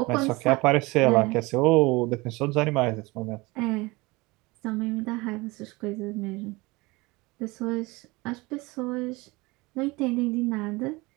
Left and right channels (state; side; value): quieter; left; 23.4 dB